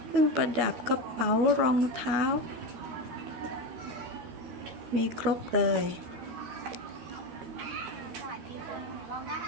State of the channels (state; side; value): late; left; 13 ms